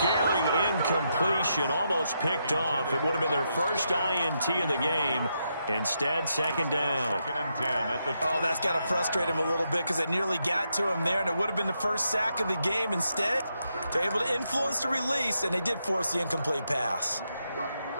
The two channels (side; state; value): both; inverted; correlation -0.82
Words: incompletion, almost picked off. It would have been their first INT of the game. Instead, 2nd down. 2nd and 10 at the Oh, that's got to frustrate him a little bit because they nearly got to him there, and it would have been the first sack of the game. Instead, they're able to influence the release, and they did force the incomplete pass.